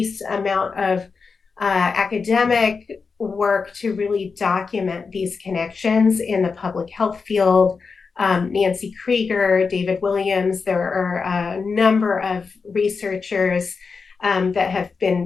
amount of academic work to really document these connections in the public health field. Nancy Krieger, David Williams, there are a number of researchers that have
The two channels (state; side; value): quieter; right; 5.0 dB